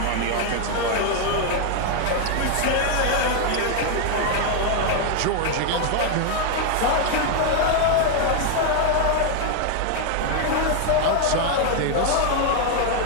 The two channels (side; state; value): both; different; correlation 0.01